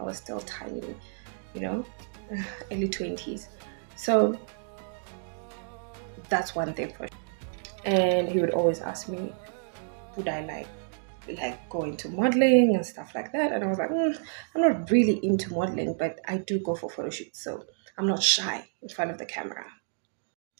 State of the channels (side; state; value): left; silent; digital silence